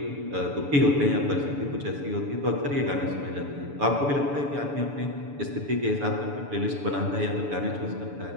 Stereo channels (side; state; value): left; late; 7.0 ms